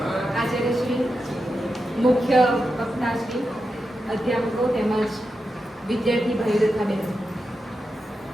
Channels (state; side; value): normal; both; correlation 0.89